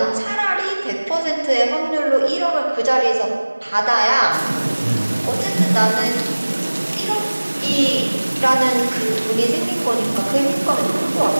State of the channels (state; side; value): inverted; both; correlation -1.00